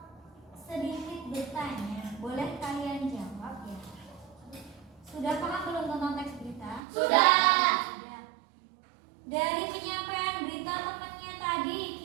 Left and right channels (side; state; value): left; drops out; at 6.8 s